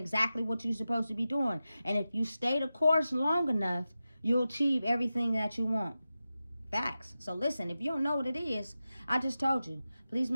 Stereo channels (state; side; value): inverted; both; correlation -0.93